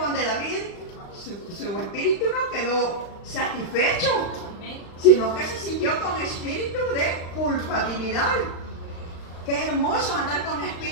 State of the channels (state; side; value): late; right; 35 ms